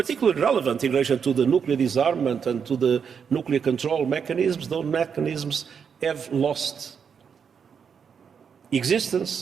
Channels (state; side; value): quieter; left; 6.8 dB